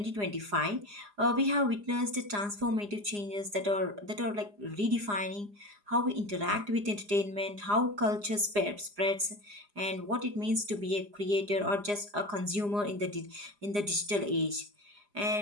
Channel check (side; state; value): left; late; 4.9 ms